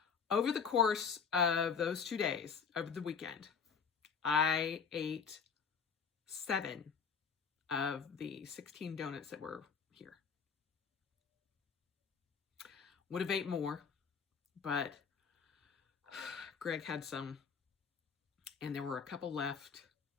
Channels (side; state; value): right; quieter; 6.1 dB